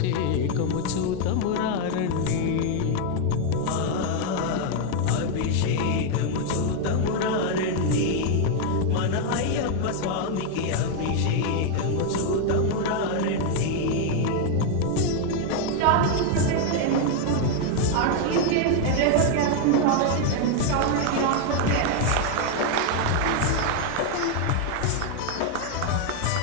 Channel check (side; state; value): both; different; correlation 0.00